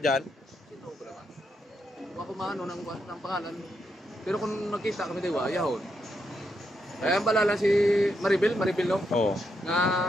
dyan. Sino ko naman? Tuwa ko maano ng pangalan. Pero kung nakita kami diwa, yahon. Kaya ang balala si Maribel no? Oo. Nga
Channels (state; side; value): normal; both; correlation 0.82